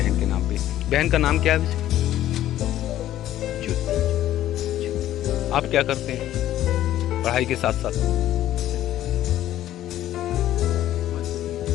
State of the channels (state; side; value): quieter; right; 13.0 dB